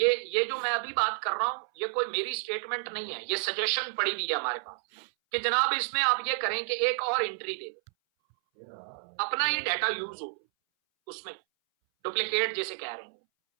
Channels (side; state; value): left; silent; 58 dB below the other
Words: जो मैं अभी बात कर रहा हूं, ये कोई मेरी स्टेटमेंट नहीं है, ये सजेशन पड़ी हुई है हमारे पास कि जनाब इसमें आप ये करें कि एक और एंट्री दे दें, अपना ये डाटा यूज हो, उसमें डुप्लीकेट जैसे कह रहे हैं,